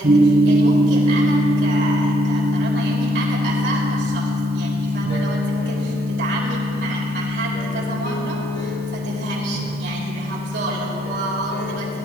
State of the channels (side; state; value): both; normal; correlation 0.70